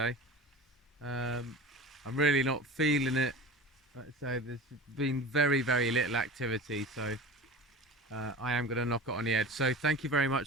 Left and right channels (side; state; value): both; normal; correlation 0.35